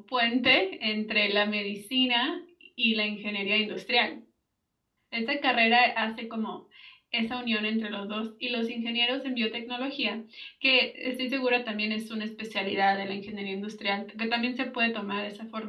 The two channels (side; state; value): both; identical; correlation 1.00